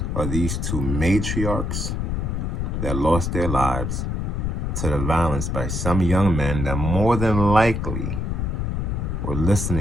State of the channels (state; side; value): noise; left; rumble, 1 dB below the sound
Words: of these 2 matriarchs that lost their lives to the violence by some young men that more than likely were